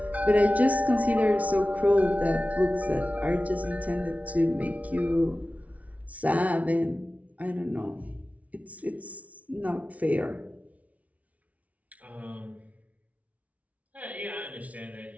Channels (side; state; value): left; late; 0.068 ms